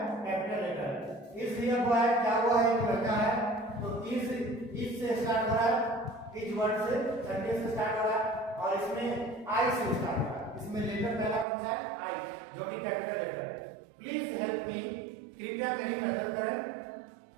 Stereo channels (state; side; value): drops out; left; at 11.5 s